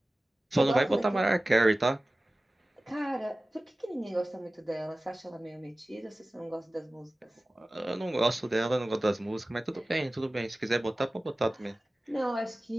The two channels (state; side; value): normal; both; correlation 0.97